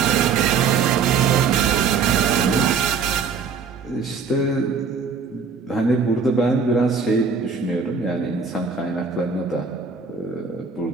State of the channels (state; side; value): quieter; left; 5.4 dB